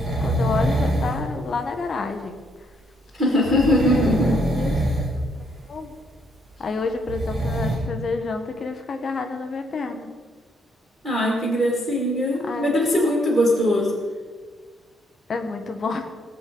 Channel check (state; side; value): normal; both; correlation 0.71